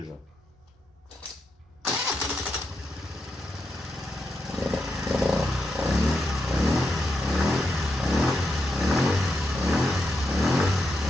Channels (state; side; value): normal; both; correlation 0.84